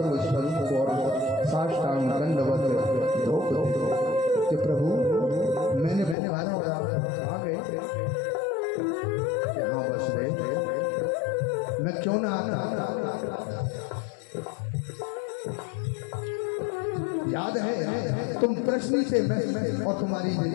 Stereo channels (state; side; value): drops out; right; at 6.2 s